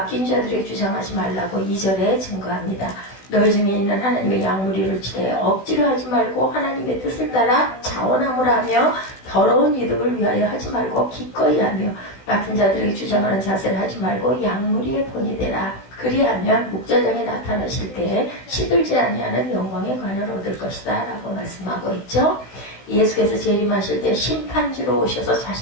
자들에게 주장하지 말라고 2절에 증거합니다. 너희 중에 있는 하나님의 양무리를 치되 억지로 하지 말고 하나님의 뜻을 따라 자원함을 하며 더러운 이득을 위하여 하지 말고 기꺼이 하며 맡은 자들에게 주장하는 자세를 하지 말고 양무리의 본이 되라. 그리하면 목자장에 나타나실 때에 시들지 아니하는 영광의 관을 얻을 것이다 라고 말씀하고 있죠. 예수께서 재림하실 때 심판주로 오셔서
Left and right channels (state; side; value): late; right; 16 ms